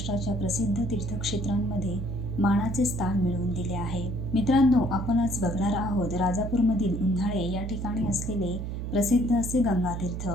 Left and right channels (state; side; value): noise; right; hum, 5 dB below the sound